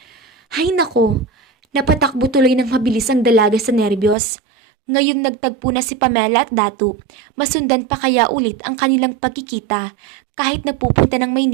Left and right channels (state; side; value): drops out; left; at 4.2 s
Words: Hay nako, napatakbo tuloy ng mabilis ang dalaga sa nerbiyos. Ngayong nagtagpo na si Pamela at Datu, masundan pa kaya ulit ang kanilang pagkikita kahit napupunta ng